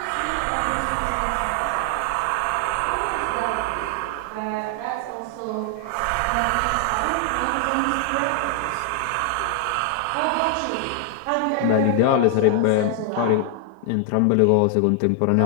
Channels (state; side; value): different; both; correlation 0.00